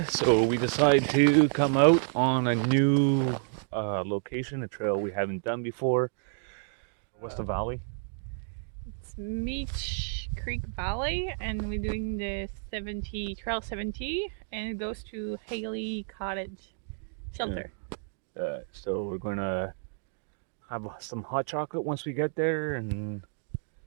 So we decided to come out on a new location, a trail we haven't done before. What's the valley? It's Meech Lake Valley, and we're doing the Trail 70, and it goes to Gille Cottage Shelter. Yeah. So we're gonna have some hot chocolate once we get there, and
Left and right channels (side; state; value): left; silent; digital silence